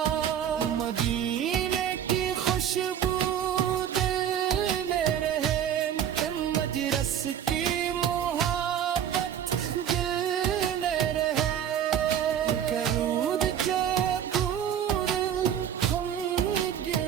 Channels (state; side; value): quieter; left; 9.4 dB